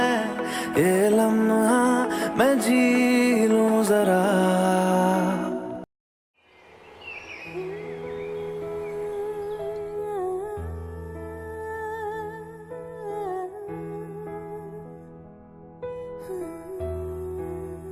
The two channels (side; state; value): both; identical; correlation 1.00